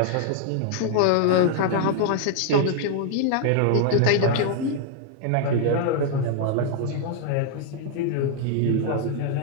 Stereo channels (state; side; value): different; both; correlation 0.00